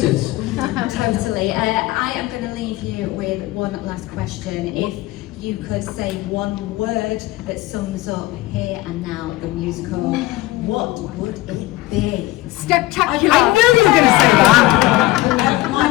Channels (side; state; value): right; quieter; 18.4 dB